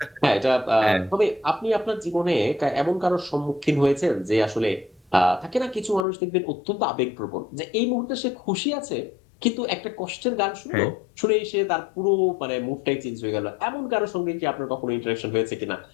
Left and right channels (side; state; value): right; drops out; at 6.1 s